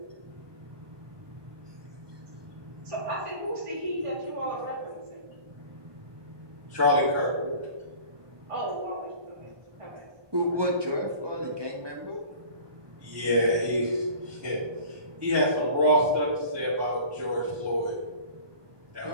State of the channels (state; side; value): late; left; 1.2 ms